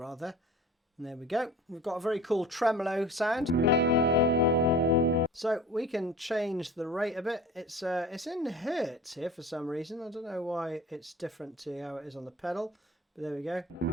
And there we go. We've got a very cool tremolo sound. So we can change the rate a bit. It's in hertz here for some reason. I don't know why it's different to how it is on the pedal, but there we go.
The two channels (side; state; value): both; normal; correlation 0.41